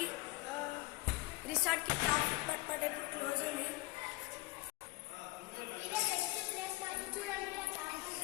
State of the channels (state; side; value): quieter; right; 20.4 dB